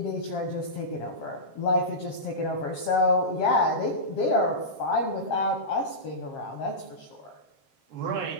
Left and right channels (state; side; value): late; right; 7.5 ms